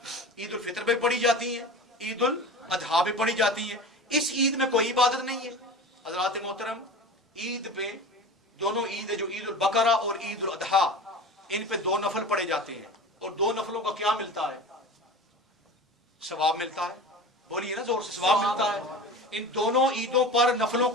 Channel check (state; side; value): normal; both; correlation 0.34